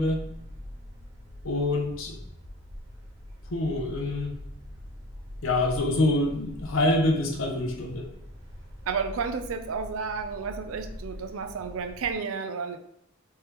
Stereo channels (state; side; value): normal; both; correlation 0.30